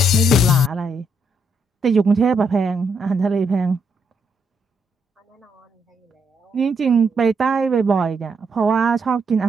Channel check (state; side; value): normal; both; correlation 0.76